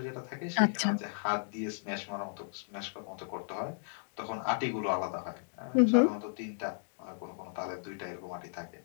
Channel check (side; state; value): right; silent; digital silence